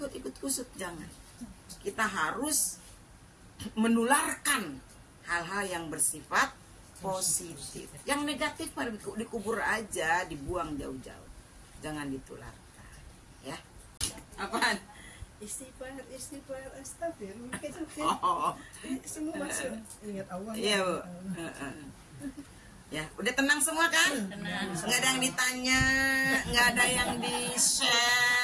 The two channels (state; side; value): identical; both; correlation 1.00